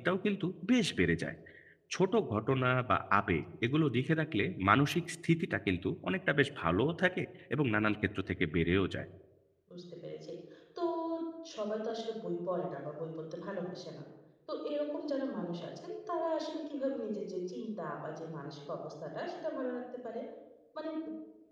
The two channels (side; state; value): both; identical; correlation 1.00